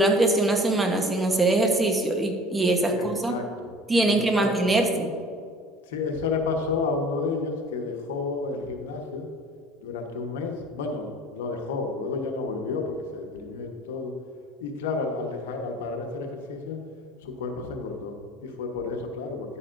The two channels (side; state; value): both; normal; correlation 0.46